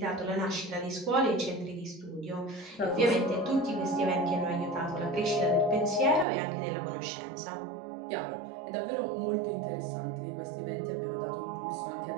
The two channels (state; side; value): drops out; left; at 6.2 s